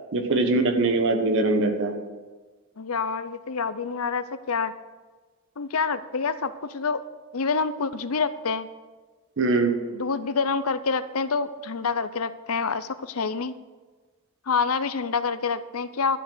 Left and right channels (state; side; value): normal; both; correlation -0.11